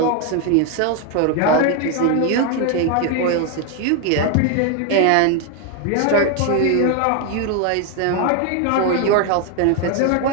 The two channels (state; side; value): different; both; correlation 0.01